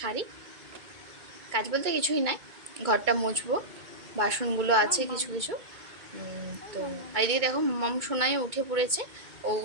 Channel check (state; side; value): late; left; 2.2 ms